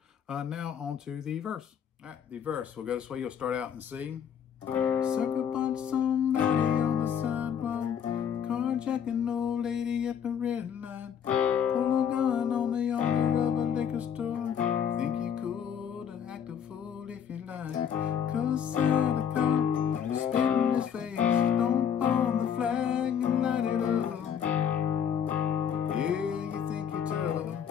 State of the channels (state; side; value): quieter; right; 8.2 dB